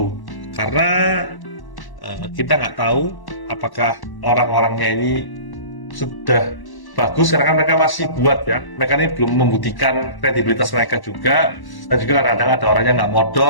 karena kita nggak tahu apakah orang-orangnya ini sudah bagus, karena kan mereka masih buat ya, mereka ini belum membuktikan kredibilitas mereka juga, dan juga kadang-kadang ada orangnya nggak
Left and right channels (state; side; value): late; right; 1.1 ms